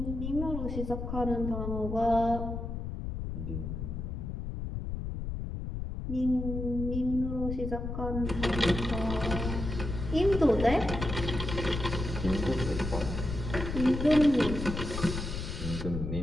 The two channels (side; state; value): left; noise; rumble, 5 dB below the sound